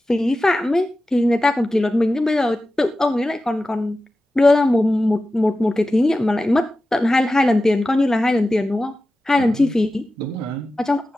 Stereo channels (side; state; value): both; normal; correlation 0.94